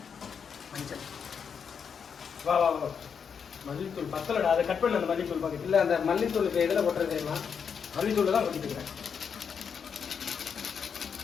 மஞ்சள். வா வா வா. மல்லித்தூள் பத்தலடா. அதை கட் பண்ண அந்த மல்லித்தூள் பாக்கெட். இல்ல அந்த மல்லித்தூளுக்கு எதுல போட்டுறது தெரியுமா? மல்லித்தூள் தான் கொட்டிட்டு இருக்கேன்.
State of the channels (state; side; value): quieter; right; 6.7 dB